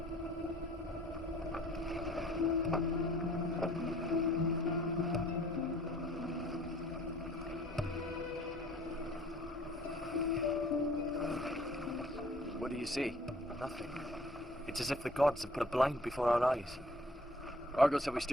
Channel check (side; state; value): both; normal; correlation 0.55